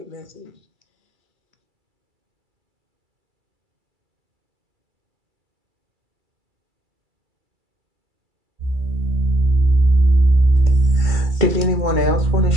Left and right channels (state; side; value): late; left; 2.1 ms